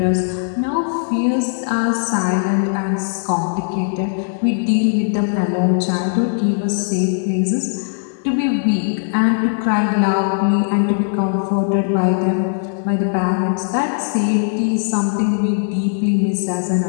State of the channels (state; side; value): silent; right; digital silence